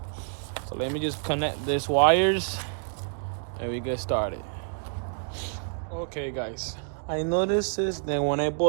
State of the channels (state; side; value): silent; left; digital silence